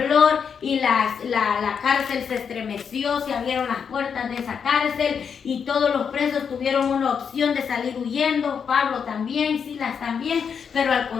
y la cárcel se estremeció, se abrieron las puertas de esa cárcel y todos los presos tuvieron una opción de salir huyendo, Pablo también, Silas también, pero al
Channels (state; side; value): quieter; right; 6.8 dB